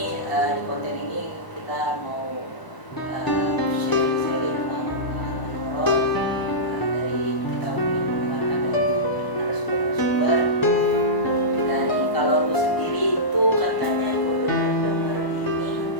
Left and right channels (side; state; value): right; late; 1.0 ms